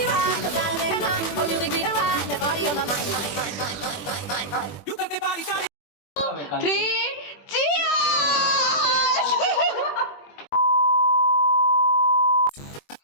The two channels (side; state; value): right; late; 21 ms